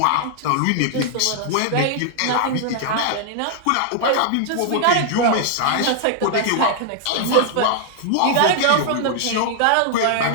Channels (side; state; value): both; different; correlation 0.00